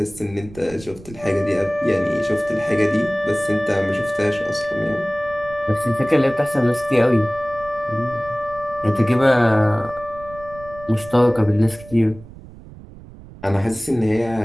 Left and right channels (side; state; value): right; noise; rumble, 18 dB below the sound